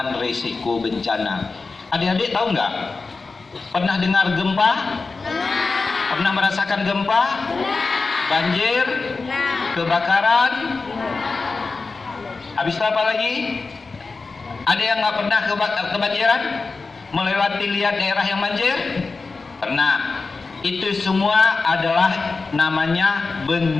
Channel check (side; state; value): right; quieter; 4.1 dB